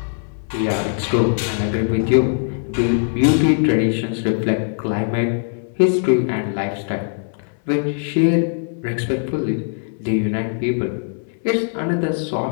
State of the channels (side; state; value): right; silent; 61 dB below the other